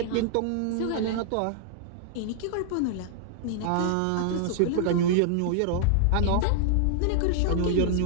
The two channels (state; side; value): different; both; correlation -0.01